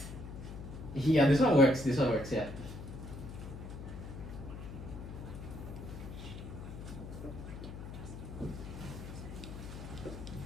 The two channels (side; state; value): left; noise; hum, 10 dB below the sound